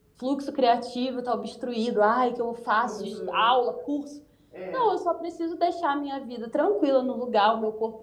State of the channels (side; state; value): both; identical; correlation 1.00